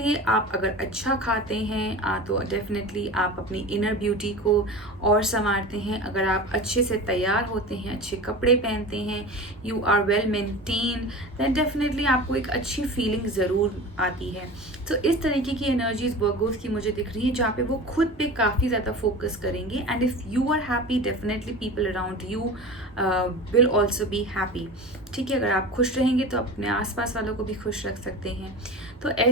आप अगर अच्छा खाते हैं तो डेफिनेटली आप अपनी इनर ब्यूटी को और संवारते हैं, अगर आप अच्छे से तैयार होते हैं, अच्छे कपड़े पहनते हैं, you are well maintain, then definitely आपको एक अच्छी फीलिंग ज़रूर आती है। तो इस तरीके की एनर्जीज वर्गोस की मुझे दिख रही है, जहाँ पे वो खुद पे काफ़ी ज़्यादा फोकस करेंगे, and if you are happy definitely people around you will also be happy. ठीक है, अगर आप खुश रहेंगे तो अपने आसपास वालों को भी खुश रख सकते हैं। तो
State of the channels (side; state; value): both; normal; correlation 0.33